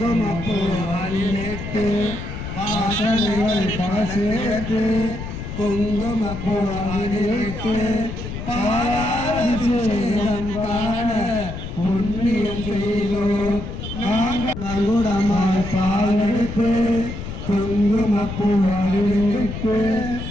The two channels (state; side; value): noise; left; rumble, 8 dB below the sound